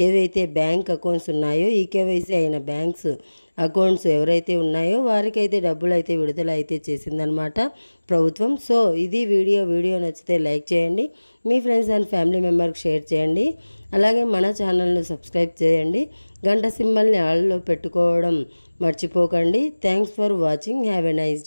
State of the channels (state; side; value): inverted; both; correlation -1.00